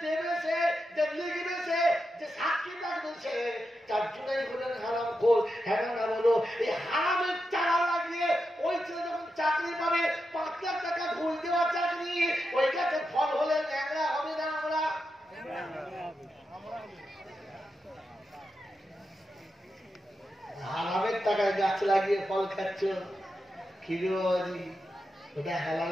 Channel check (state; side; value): normal; both; correlation 0.88